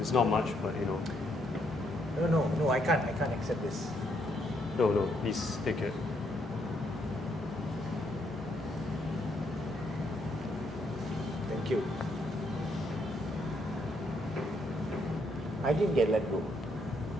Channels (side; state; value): both; normal; correlation 0.74